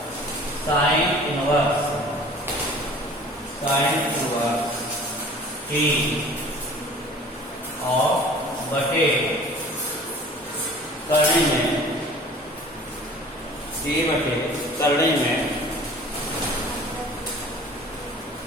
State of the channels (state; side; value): normal; both; correlation 0.46